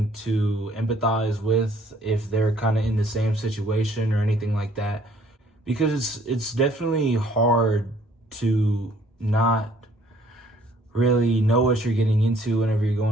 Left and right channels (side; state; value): both; normal; correlation 0.60